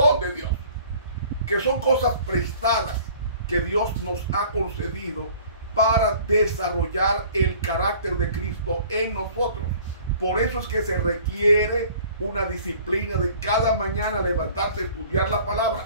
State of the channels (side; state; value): both; inverted; correlation -0.50